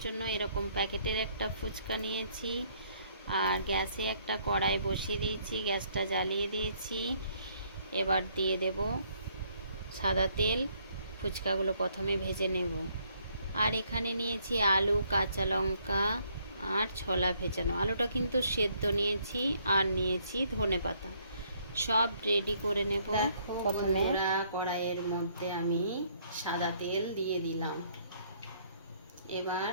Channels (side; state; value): both; inverted; correlation -0.67